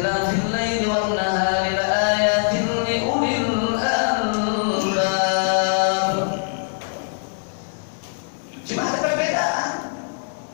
laili wan nahari la ayatin li ulil albab. Cuma ada perbedaan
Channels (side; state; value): right; silent; digital silence